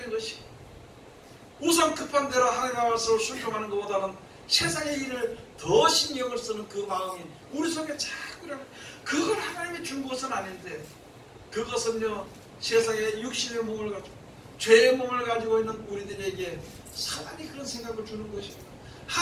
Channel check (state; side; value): identical; both; correlation 1.00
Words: 것이고, 우선 급한 대로 하나님의 말씀을 순종하는 것보다는 세상의 일을 더 신경을 쓰는 그 마음이 우리 속에 자꾸 일어나요. 그걸 하나님이 준 것은 아닌데, 그것은요 세상의 육신의 몸을 가지고 죄의 몸을 가지고 있는 우리들에게 사단이 그런 생각을 주는 것입니다.